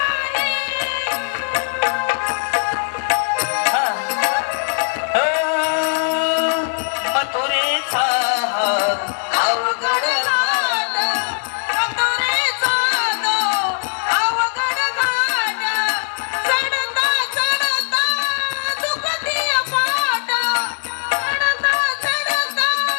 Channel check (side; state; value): right; silent; digital silence